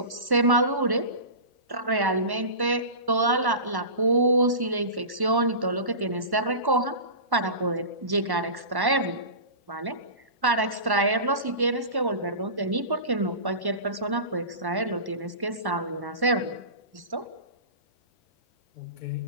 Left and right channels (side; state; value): left; late; 1.1 ms